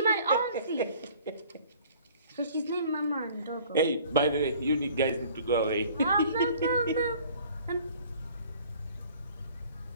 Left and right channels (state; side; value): inverted; both; correlation -0.52